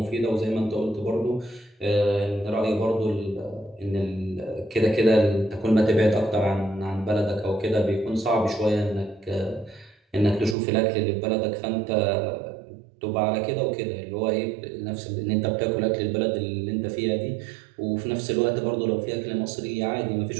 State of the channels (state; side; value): drops out; left; at 10.6 s